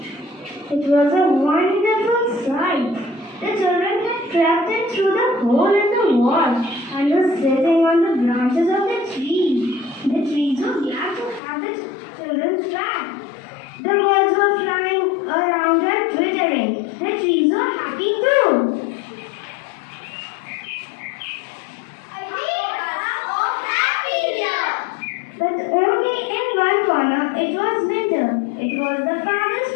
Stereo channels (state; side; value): drops out; right; at 11.4 s